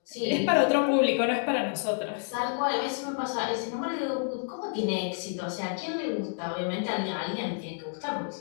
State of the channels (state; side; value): silent; right; 58 dB below the other